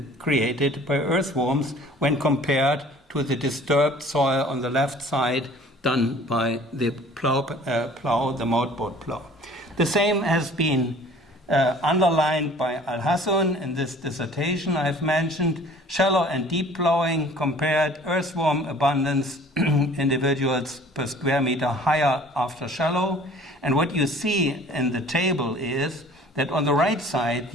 created by earthworms when compared to the disturbed soil on the left side done by the the motorboat plow. The same has been underlined by Al-Hassan in this dissertation I've mentioned. Shallow and deep plowing compared earthworm abundance individuals per square meter higher after shallow. And what you see in the table is that on the right side,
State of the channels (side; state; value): both; normal; correlation 0.50